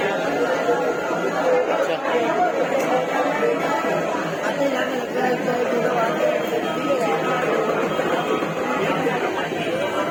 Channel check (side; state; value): both; identical; correlation 1.00